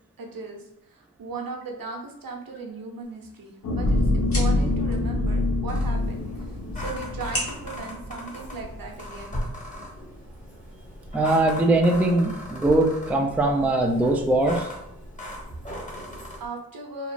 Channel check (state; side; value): normal; both; correlation 0.61